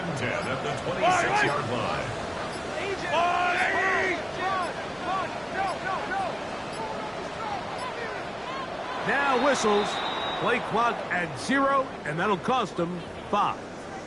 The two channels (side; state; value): both; identical; correlation 1.00